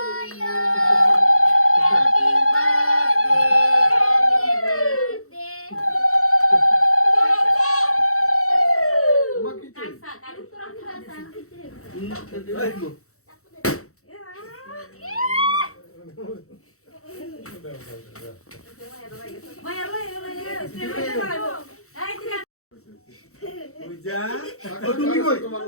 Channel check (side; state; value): right; late; 0.64 ms